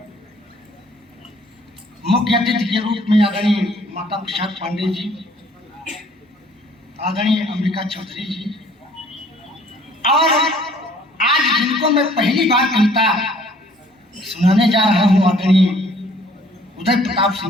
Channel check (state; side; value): normal; both; correlation 0.58